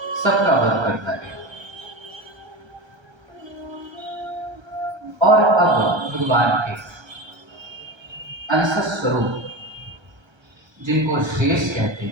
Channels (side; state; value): left; late; 1.3 ms